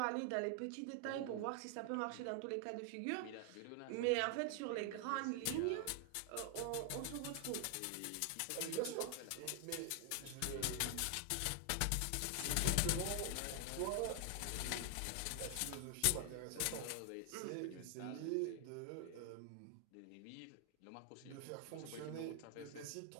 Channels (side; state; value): both; different; correlation 0.00